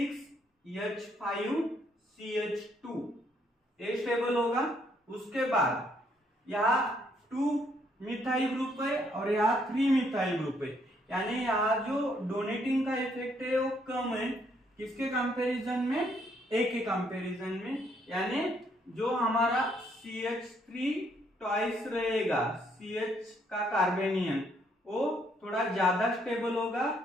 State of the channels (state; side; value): normal; both; correlation 0.70